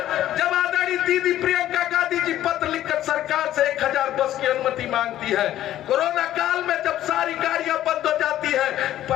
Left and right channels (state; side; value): quieter; right; 12.9 dB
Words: जब आदरणीय दीदी प्रियंका गांधी जी पत्र लिखकर सरकार से 1000 बस की अनुमति मांगती है, कोरोना काल में जब सारी गाड़ियां बंद हो जाती है,